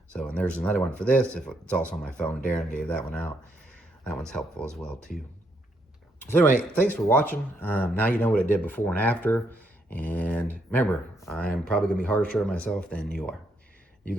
So, and there's another one for this. If it's also on my phone, Darren gave that one out. That one's helpful as well too. So anyway, thanks for watching. Now you know what it did before and after. And remember, I'm probably gonna be harsher on myself than you are. You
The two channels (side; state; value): both; normal; correlation 0.76